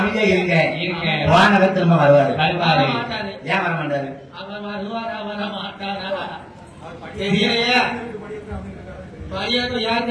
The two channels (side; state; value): both; identical; correlation 1.00